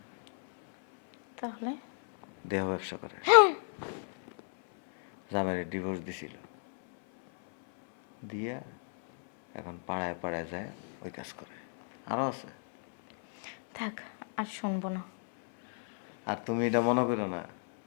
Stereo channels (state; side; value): silent; right; 57 dB below the other